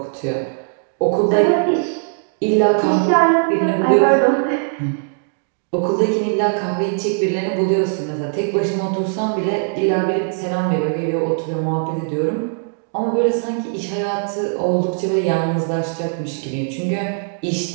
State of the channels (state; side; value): silent; left; digital silence